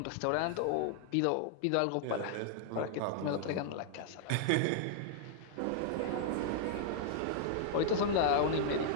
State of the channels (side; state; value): both; different; correlation -0.01